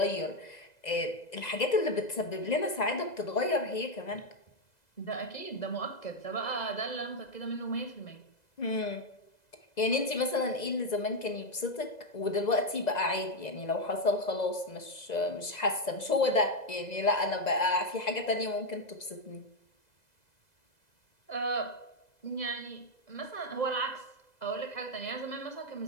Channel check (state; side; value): late; right; 2.0 ms